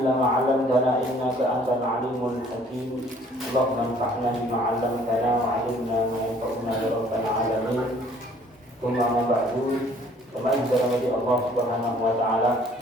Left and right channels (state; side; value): normal; both; correlation 0.57